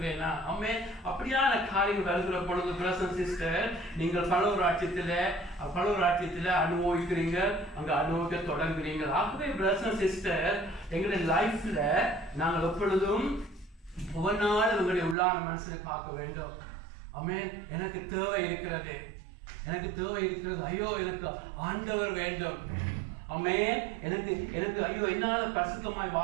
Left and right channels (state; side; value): drops out; left; at 15.2 s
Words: ஆமென். அப்படியான காரியங்கள் வருகிற பொழுது பிரதர் சிஸ்டர், நீங்கள் பரலோகராஜ்யத்தில் அனுபவிக்கிறீங்க, அங்க அனுபவிக்க தொடங்குறீங்க. ஆகவே பிரதர் சிஸ்டர், எங்களுடைய லைஃப்ல நாங்கள் எப்பொழுதும் ஒவ்வொரு நாளும் உங்களுடைய உள்ளான மனசுல பார்க்க வேண்டும். ஆமென். எனக்கு தேவை இருக்கிறது, எனக்கு தேவை இருக்கிறது. ஐயோ எனக்கு ஆண்டவர் வேண்டும். ஆமென். எனக்கு ஐயோ என்னால பரிசுத்தமாய்